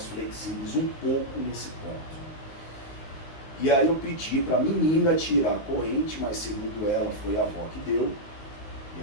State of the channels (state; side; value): late; right; 19 ms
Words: flexíveis um pouco nesse ponto. E aí eu pedi para a menina tirar a corrente, mas segundo ela foi a avó que deu. E